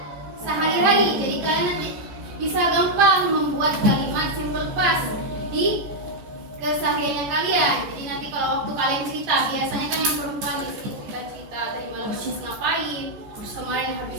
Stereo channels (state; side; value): late; left; 14 ms